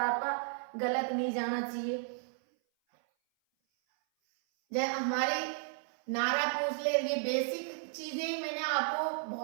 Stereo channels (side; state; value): left; silent; 55 dB below the other